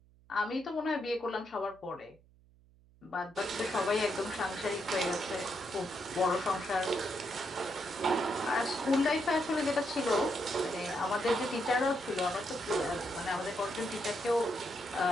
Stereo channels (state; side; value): noise; right; hum, 28 dB below the sound